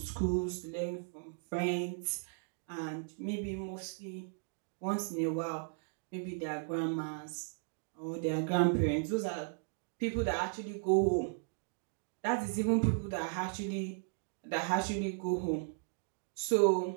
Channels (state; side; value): silent; left; digital silence